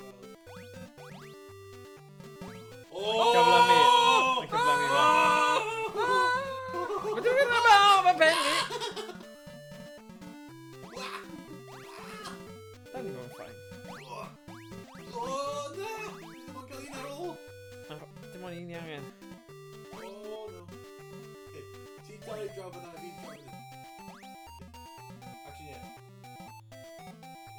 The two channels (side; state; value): both; identical; correlation 1.00